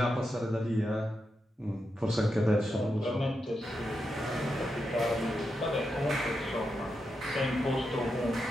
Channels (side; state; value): both; normal; correlation 0.86